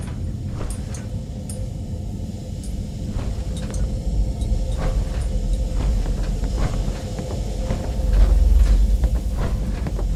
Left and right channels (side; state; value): both; identical; correlation 1.00